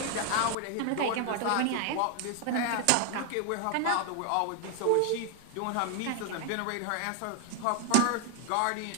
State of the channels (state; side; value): different; both; correlation 0.01